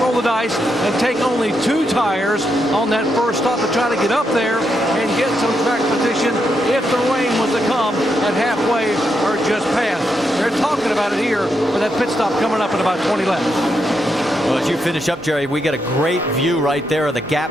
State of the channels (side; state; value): both; normal; correlation 0.82